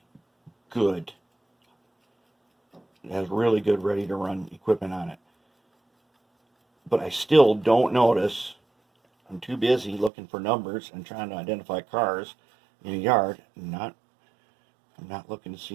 good ready to run equipment on it. But I still don't notice. I'm too busy looking for numbers and trying to identify cars in a yard. I'm not looking to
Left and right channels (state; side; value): drops out; left; at 10.1 s